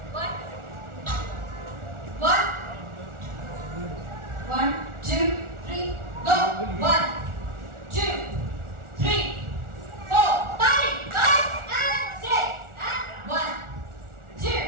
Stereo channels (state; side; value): late; left; 1.4 ms